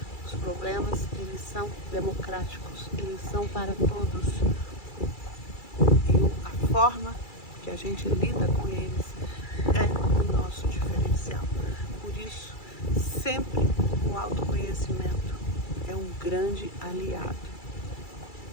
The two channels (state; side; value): late; right; 2.3 ms